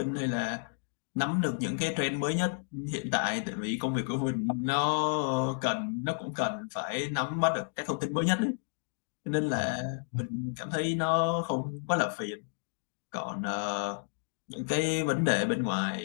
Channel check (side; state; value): right; silent; digital silence